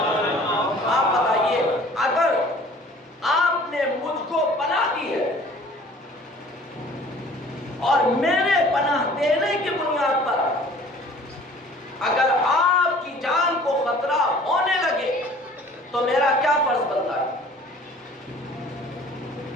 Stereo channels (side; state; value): both; normal; correlation 0.50